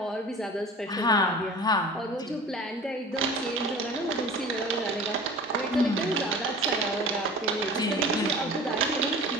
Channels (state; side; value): normal; both; correlation 0.40